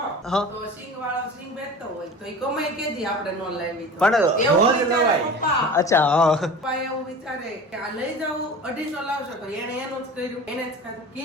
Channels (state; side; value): normal; both; correlation 0.36